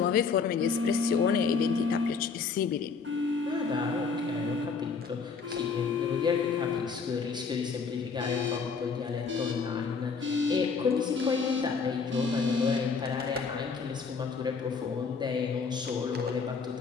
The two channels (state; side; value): quieter; right; 5.2 dB